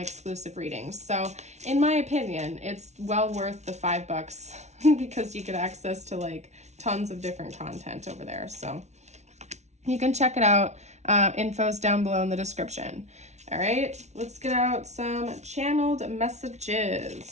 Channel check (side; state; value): left; late; 0.32 ms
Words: exclusive readings. So in my opinion, it's well worth the $5 because you get access to like tons of different content over there. So you can check it out. Info's down below in the description. All right, let's get out some channeled